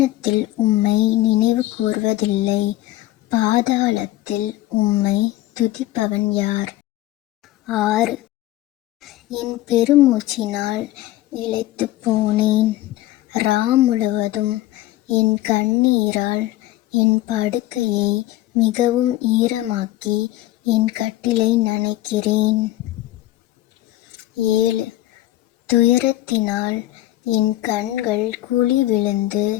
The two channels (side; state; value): right; quieter; 15.7 dB